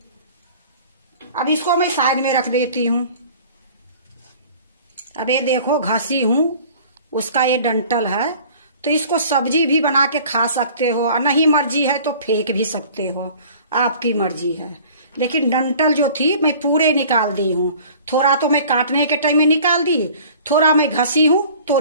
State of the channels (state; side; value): inverted; both; correlation -0.47